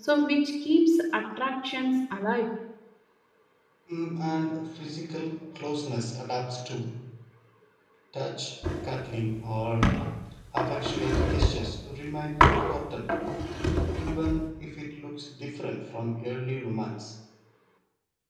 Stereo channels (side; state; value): both; identical; correlation 1.00